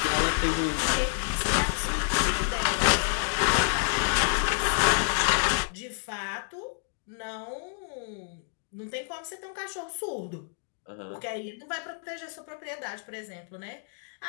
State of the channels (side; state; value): right; silent; 59 dB below the other